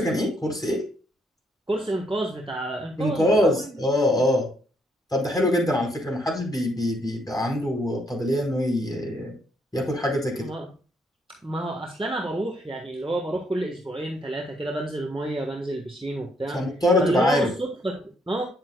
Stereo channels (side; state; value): both; normal; correlation 0.72